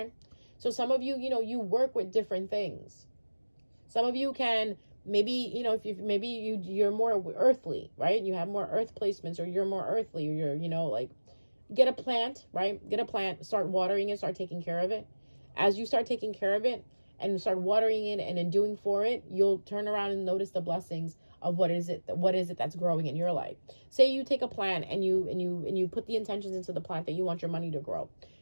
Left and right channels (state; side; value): inverted; both; correlation -1.00